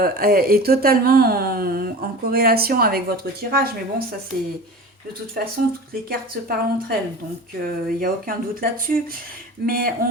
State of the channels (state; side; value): normal; both; correlation 0.35